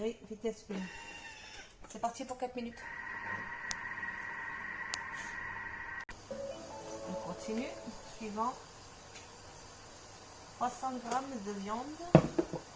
vitesse 1. C'est parti pour 4 minutes. On continue. Suivant, 300 g de viande.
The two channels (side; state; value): both; identical; correlation 1.00